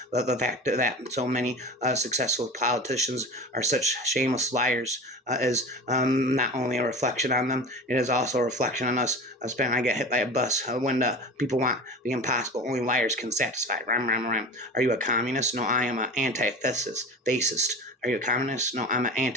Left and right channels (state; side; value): normal; both; correlation 0.33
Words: The fact that so many successful politicians are such shameless liars is not only a reflection on them, it is also a reflection on us. I get hit by a bus when the people want the impossible. Only liars can satisfy. Rhyme. Are you a communist? No, I am an anti-fascist. Are you a communist? No, I'm an